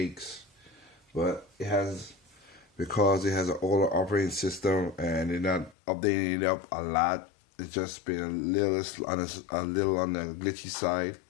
But it has, because it has an older operating system and they're not updating it up a lot, it's just been a little on the glitchy side.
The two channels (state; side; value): drops out; right; at 5.8 s